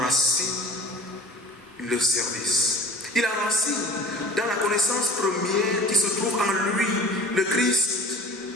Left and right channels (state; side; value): normal; both; correlation 0.43